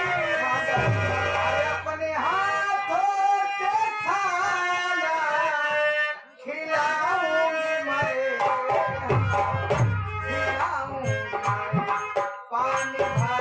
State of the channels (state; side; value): identical; both; correlation 1.00